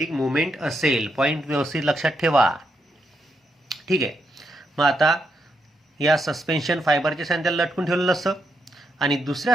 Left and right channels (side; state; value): both; normal; correlation 0.81